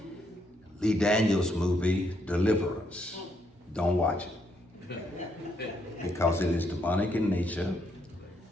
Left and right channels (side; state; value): both; normal; correlation 0.74